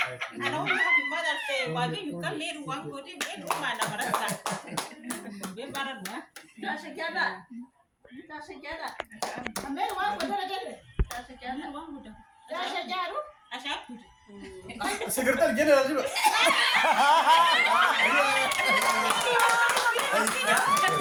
Ana ongi happy Mother's Day. Wagi yukan leru wang kodi ben uma na barasa. Be baran wa. ta se jada ame wa ko dara jade ta se jada wang muda Dasha jaru. Asha. Secretary General juga.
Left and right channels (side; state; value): both; identical; correlation 1.00